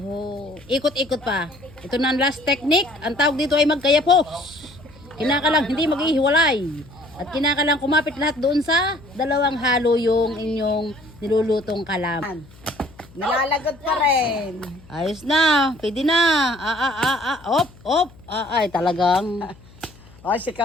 ikot-ikot pa. Ito na ang last technique. Ang tawag dito ay magkayapos. Kinakalang hindi maghihiwalay. At kinakalang kumapit lahat doon sa dalawang halo yung inyong nilulutong kalamay. Nalalagot pa rin. Ayos na. Pwede na. Op. Ay, talagang. O, si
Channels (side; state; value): left; noise; hum, 24 dB below the sound